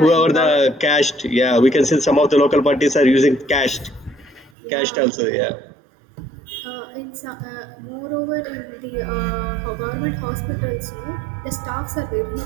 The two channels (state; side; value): drops out; left; at 4.5 s